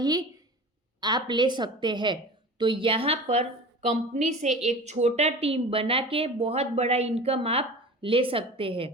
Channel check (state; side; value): normal; both; correlation 0.36